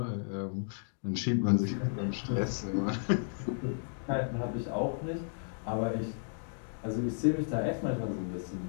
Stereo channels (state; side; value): silent; right; digital silence